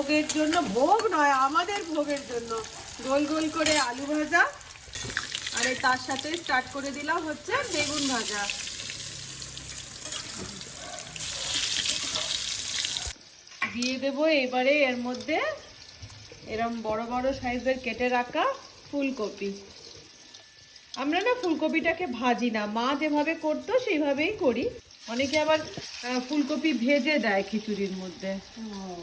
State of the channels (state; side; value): identical; both; correlation 1.00